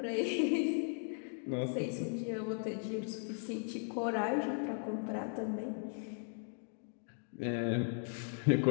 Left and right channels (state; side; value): silent; right; 53 dB below the other